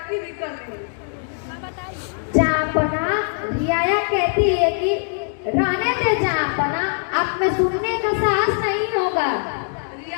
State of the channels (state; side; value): silent; right; digital silence